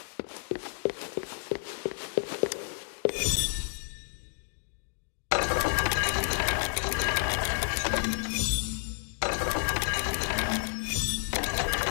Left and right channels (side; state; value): right; silent; digital silence